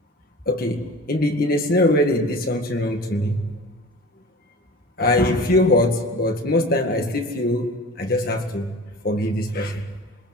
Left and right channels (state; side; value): normal; both; correlation 0.38